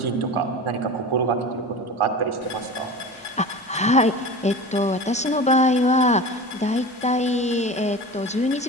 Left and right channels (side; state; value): both; normal; correlation 0.32